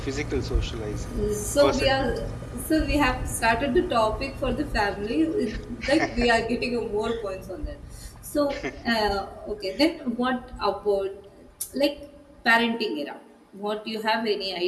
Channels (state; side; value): identical; both; correlation 1.00